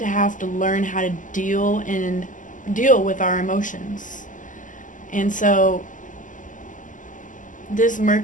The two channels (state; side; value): late; right; 0.37 ms